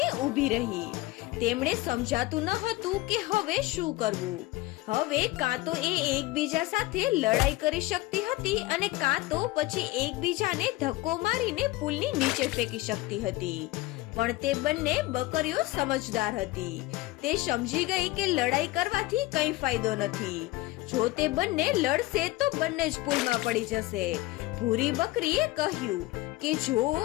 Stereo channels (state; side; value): quieter; right; 19.0 dB